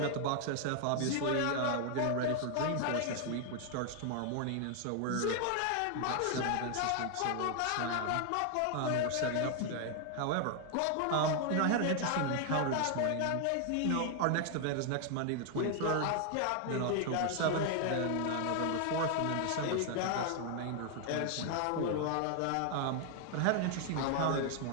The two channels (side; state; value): both; different; correlation 0.00